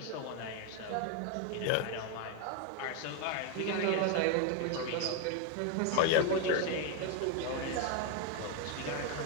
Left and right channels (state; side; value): different; both; correlation 0.01